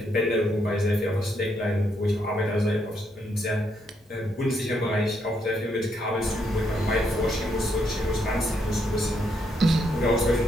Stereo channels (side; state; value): both; normal; correlation 0.76